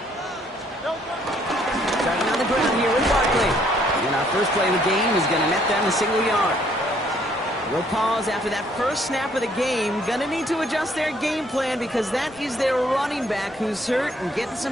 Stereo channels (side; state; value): both; normal; correlation 0.65